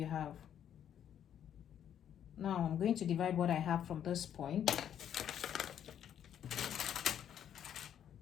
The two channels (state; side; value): quieter; right; 9.7 dB